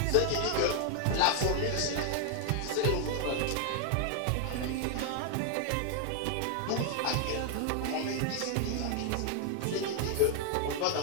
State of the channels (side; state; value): both; different; correlation 0.00